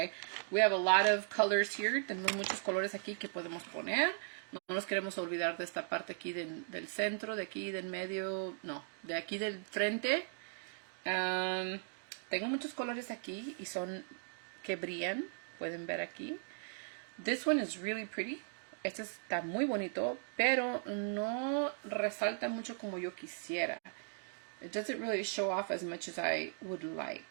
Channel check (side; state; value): left; silent; digital silence